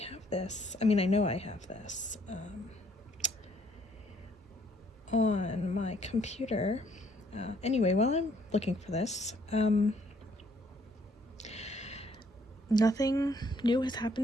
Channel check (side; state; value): both; normal; correlation 0.65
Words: have this. I mean, I know I have this on my computer. Anyway, while I'm looking for this, nothing new has